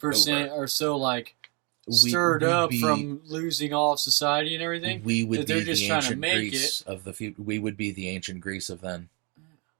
are so like stirred up from losing all of society and everything. We would they're be just the trying to ancient make Greece it. of the future. We would be the ancient Greece of then,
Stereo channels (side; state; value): left; quieter; 31.7 dB